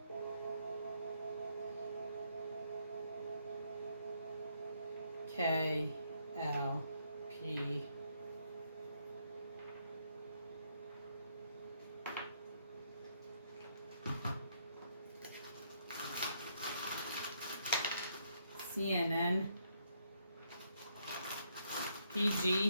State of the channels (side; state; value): both; inverted; correlation -0.73